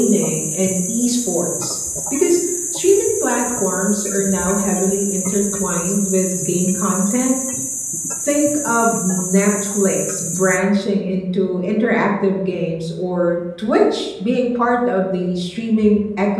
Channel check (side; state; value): both; identical; correlation 1.00